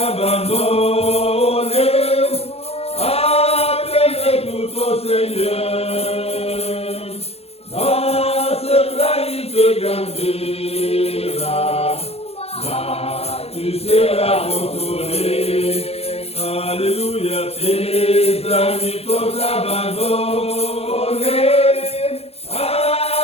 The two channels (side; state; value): right; late; 0.29 ms